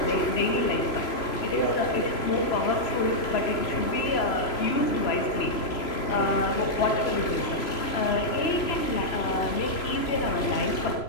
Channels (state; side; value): late; right; 3.0 ms